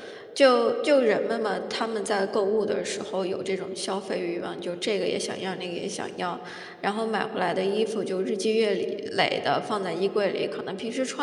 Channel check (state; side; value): identical; both; correlation 1.00